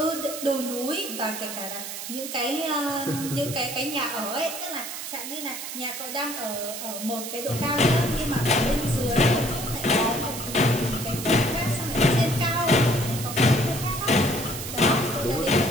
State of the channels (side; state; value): right; noise; hiss, 8 dB below the sound